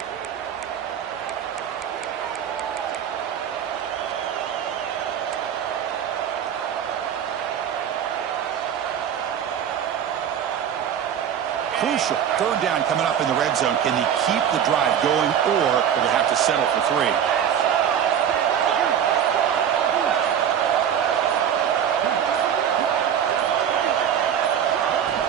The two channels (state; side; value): quieter; left; 9.0 dB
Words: Crucial. Third down coming up in the red zone. Can he keep the drive going, or will they have to settle for 3?